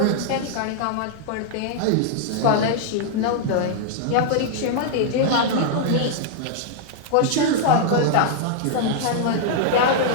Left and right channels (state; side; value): different; both; correlation -0.01